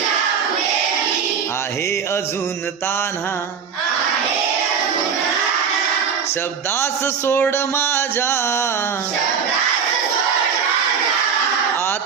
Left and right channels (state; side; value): quieter; left; 6.8 dB